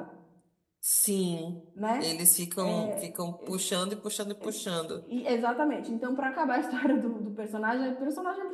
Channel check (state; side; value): identical; both; correlation 1.00